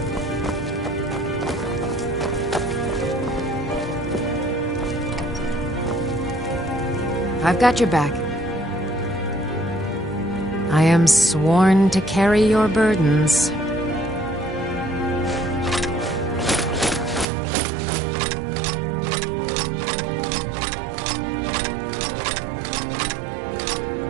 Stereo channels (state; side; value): drops out; left; at 17.2 s